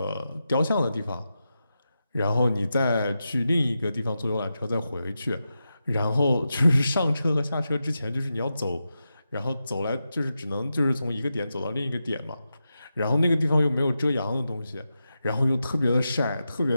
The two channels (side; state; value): both; inverted; correlation -0.89